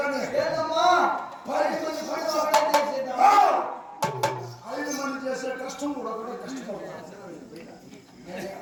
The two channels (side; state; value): both; identical; correlation 1.00